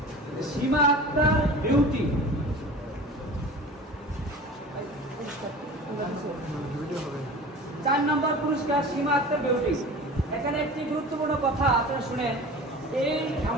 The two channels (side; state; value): both; normal; correlation 0.38